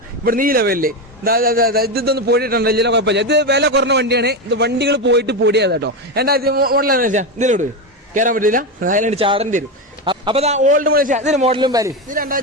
ഇവിടെ ഈ ലെവലില് ഇതൊന്ന് പോയിട്ടുണ്ടല്ലോ. ഇതിലെ കുഴപ്പമില്ല. ഇത് വില കുറഞ്ഞ വണ്ടിയാണ്. ഇത് വണ്ടികൾ പോയിട്ട് പൊടിയാ കേട്ടോ. എന്താ മോഡലാണ് വെച്ചാൽ ഇതിലോട്ട് കയറാൻ പറ്റില്ല. അതിലാണ് ചാടേണ്ടി വരും. അപ്പൊ ഓൾഡ് മോഡൽ ഇതിന് മോഡലും പേര്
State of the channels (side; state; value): both; normal; correlation 0.13